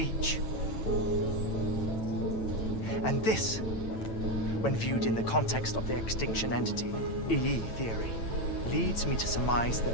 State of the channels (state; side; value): late; right; 9.0 ms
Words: And this, when viewed in the context of the extinction entity, EE theory, leads me to surmise that